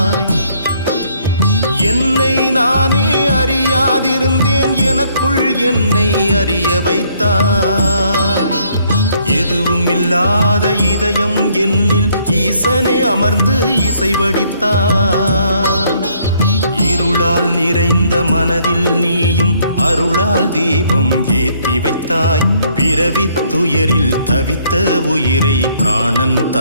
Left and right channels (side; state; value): both; inverted; correlation -0.66